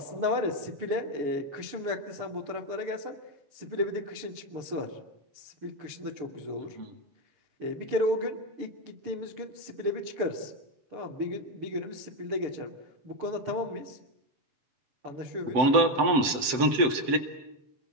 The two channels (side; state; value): left; late; 7.7 ms